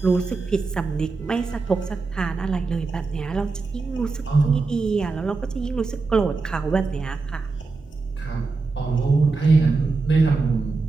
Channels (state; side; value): quieter; left; 4.1 dB